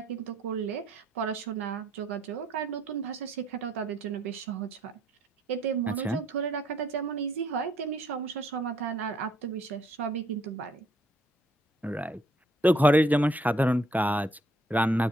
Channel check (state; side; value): normal; both; correlation 0.66